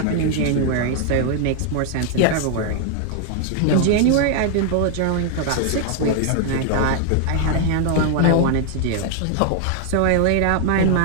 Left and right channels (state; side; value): different; both; correlation 0.00